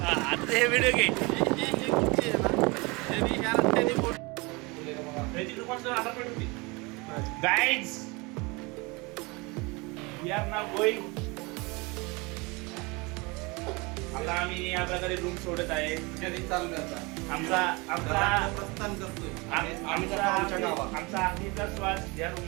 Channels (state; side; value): quieter; left; 26.4 dB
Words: आता हे व्हिडिओ घे. Guys we are now going. आता आम्ही या प्रकारे रूम सोडत आहे. आमचा आखरीचा श्वास या रूम